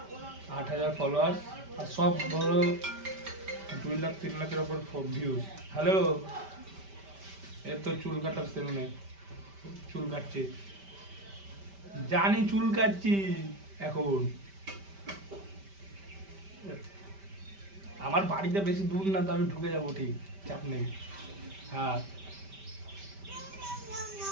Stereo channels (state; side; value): late; left; 5.1 ms